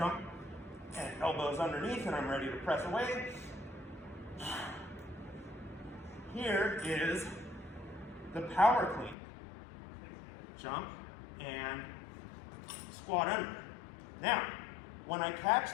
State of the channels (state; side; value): drops out; right; at 9.2 s